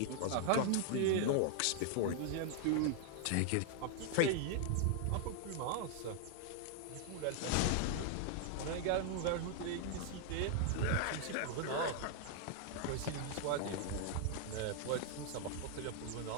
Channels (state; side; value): different; both; correlation 0.00